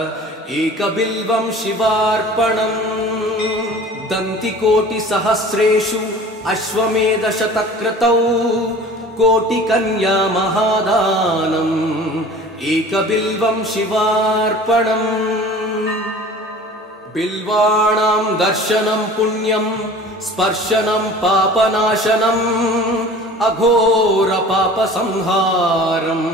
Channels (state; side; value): normal; both; correlation 0.43